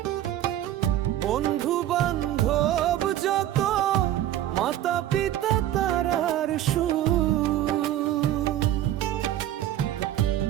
বন্ধু বান্ধব যত, মাতা পিতা তারার সুর।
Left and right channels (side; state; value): left; quieter; 12.7 dB